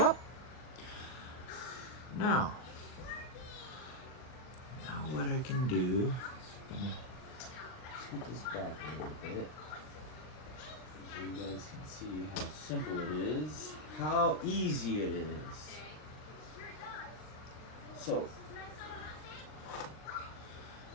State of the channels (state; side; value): late; right; 39 ms